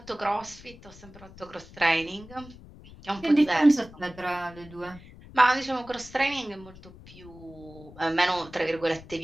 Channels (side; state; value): left; noise; rumble, 19 dB below the sound